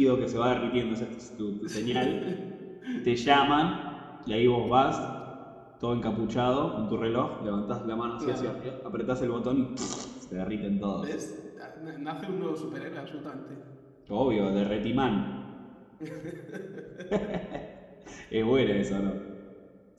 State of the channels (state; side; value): identical; both; correlation 1.00